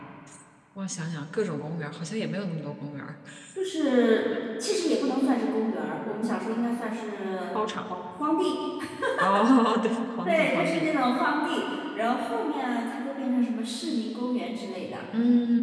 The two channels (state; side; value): identical; both; correlation 1.00